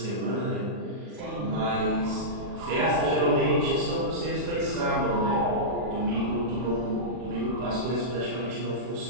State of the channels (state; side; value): late; left; 40 ms